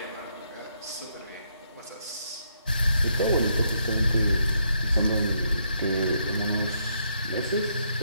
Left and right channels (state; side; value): inverted; both; correlation -0.75